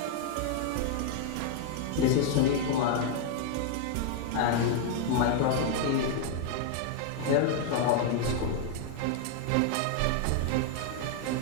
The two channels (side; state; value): both; different; correlation 0.00